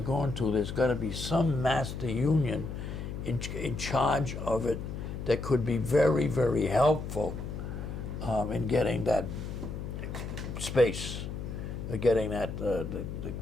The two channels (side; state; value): left; noise; hum, 6 dB below the sound